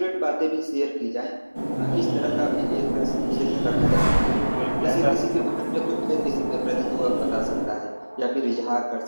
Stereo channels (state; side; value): inverted; both; correlation -1.00